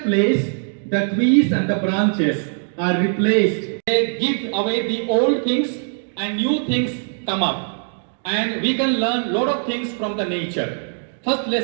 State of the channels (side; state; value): left; silent; 65 dB below the other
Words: place, the trees and the branches are replaced. They give away the old things and new things come up. And we can learn a lot of things from the nature. First